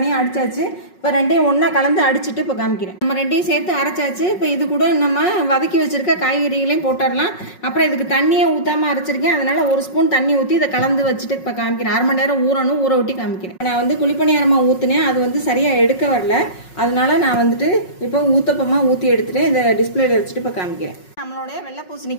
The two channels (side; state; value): right; late; 5.4 ms